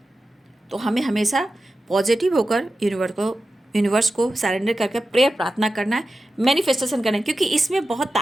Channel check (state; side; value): normal; both; correlation 0.92